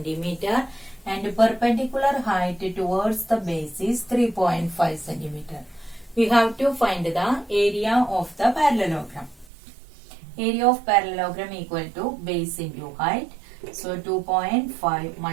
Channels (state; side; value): drops out; left; at 9.5 s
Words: and perpendicular height towards the base is 3.5 centimeter. We have to find the area of the parallelogram. Area of parallelogram equal to base into height. So 2.5